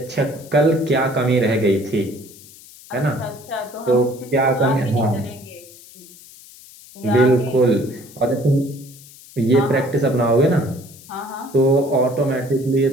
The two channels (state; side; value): noise; left; hiss, 21 dB below the sound